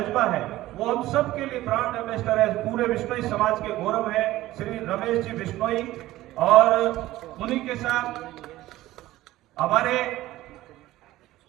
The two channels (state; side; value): quieter; left; 16.1 dB